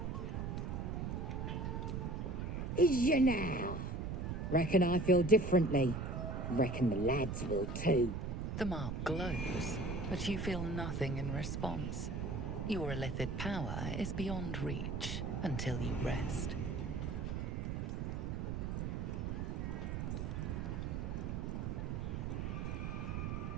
Is ya now? Reckon I feel differently. Reckon the lads will too. The mark glows, but you feel nothing in response. Your illithid power is beyond reach until you rest.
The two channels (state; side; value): noise; right; rumble, 2 dB below the sound